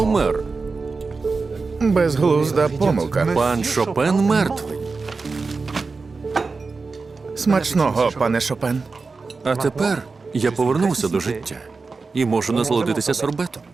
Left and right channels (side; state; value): left; quieter; 4.2 dB